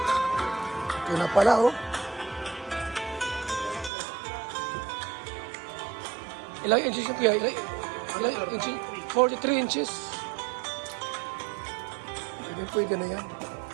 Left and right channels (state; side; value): drops out; left; at 3.9 s